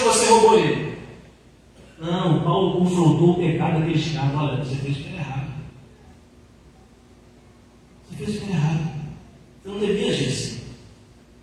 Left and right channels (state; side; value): identical; both; correlation 1.00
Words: você roubou ele. Não, Paulo confrontou o pecado daquele escravo. Olha, você fez o que era errado. Você fez o que era errado. Você não devia agir assim.